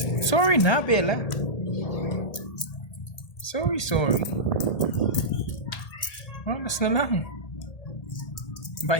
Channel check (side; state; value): right; late; 1.8 ms